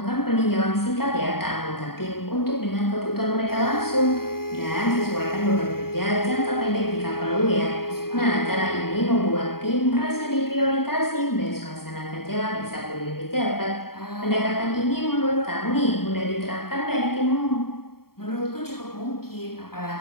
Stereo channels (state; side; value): late; right; 0.94 ms